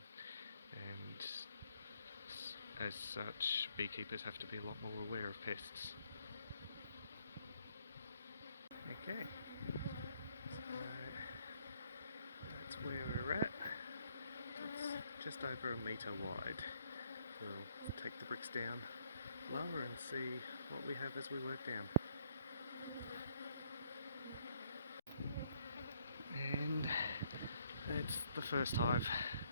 and as such beekeepers have to be a lot more aware of pests. Okay, so that's where we're at. It's just over a metre wide. We'll take the bricks down lower and see what we have as we work down. And that's the first hive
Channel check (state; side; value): inverted; both; correlation -0.68